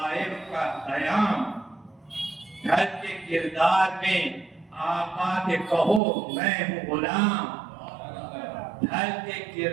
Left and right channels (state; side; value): drops out; left; at 6.0 s